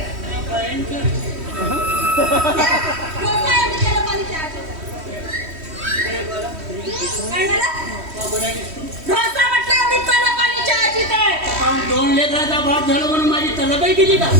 दोन लेकराचा बाप झालं म्हणून माझी तलबही केली का.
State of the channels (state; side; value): late; left; 3.1 ms